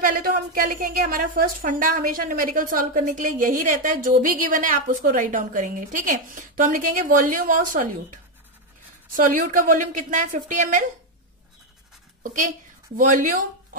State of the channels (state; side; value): normal; both; correlation 0.06